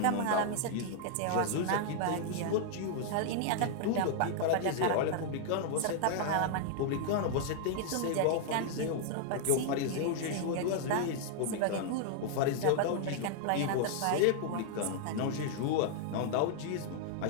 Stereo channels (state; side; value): different; both; correlation 0.00